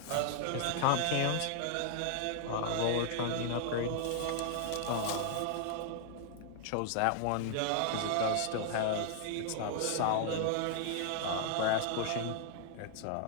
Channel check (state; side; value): different; both; correlation 0.00